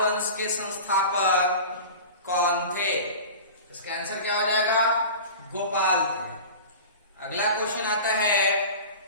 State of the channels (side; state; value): both; inverted; correlation -0.35